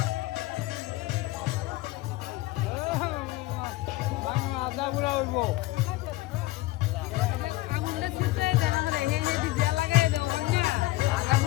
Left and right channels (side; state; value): right; quieter; 19.2 dB